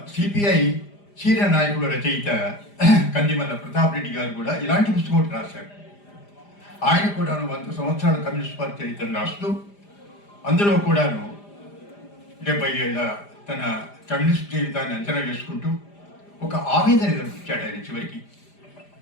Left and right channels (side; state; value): right; late; 5.0 ms